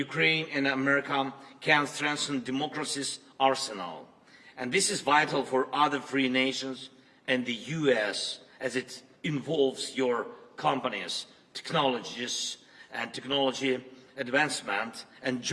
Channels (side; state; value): both; identical; correlation 1.00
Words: and America can strengthen democracy's arsenal. And this is vital for other free nations and the US, as it involves your companies, technologies, and technology advancement and